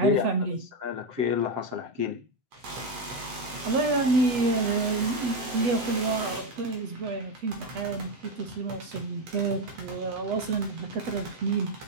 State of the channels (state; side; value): late; left; 8.1 ms